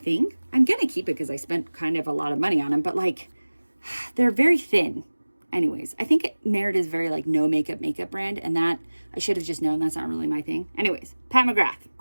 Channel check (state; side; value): inverted; both; correlation -1.00